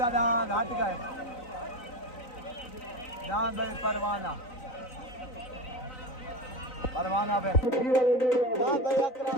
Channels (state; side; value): late; right; 3.9 ms